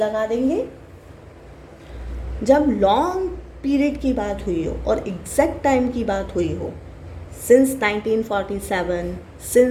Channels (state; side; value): identical; both; correlation 1.00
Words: देंगे। जब लॉन्ग पीरियड की बात हुई हो और एग्जैक्ट टाइम की बात हुई हो, सिंस 1947,